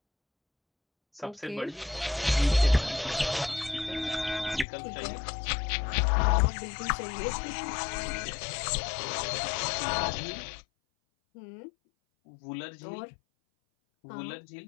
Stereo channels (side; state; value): right; drops out; at 4.7 s